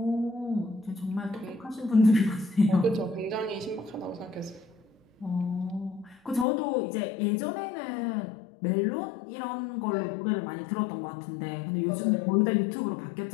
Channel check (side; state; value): right; drops out; at 6.5 s